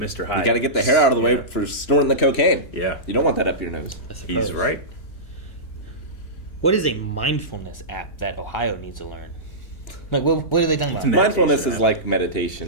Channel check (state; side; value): late; right; 3.1 ms